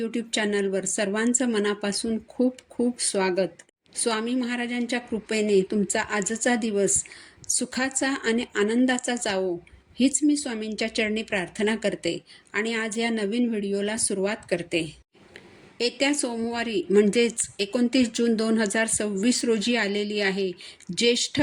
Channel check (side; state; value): both; identical; correlation 1.00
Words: चॅनलवर सर्वांचं मनापासून खूप खूप स्वागत. स्वामी महाराजांच्या कृपेने तुमचा आजचा दिवस सुखाचा आणि आनंदाचा जावो हीच मी स्वामींच्या चरणी प्रार्थना करते आणि आज या नवीन व्हिडिओला सुरुवात करते. येत्या सोमवारी म्हणजेच 29 जून 2026 रोजी आलेली आहे ज्येष्ठ